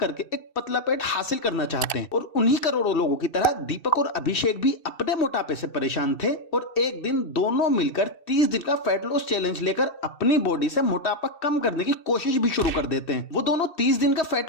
एक पतला पेट हासिल करना चाहते हैं। और उन्हीं करोड़ों लोगों की तरह दीपक और अभिषेक भी अपने मोटापे से परेशान थे और एक दिन दोनों मिलकर 30 दिन का फैट लॉस चैलेंज लेकर अपनी बॉडी से मोटापा कम करने की कोशिश भी शुरू कर देते हैं। वो दोनों 30 दिन का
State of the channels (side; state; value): right; late; 2.6 ms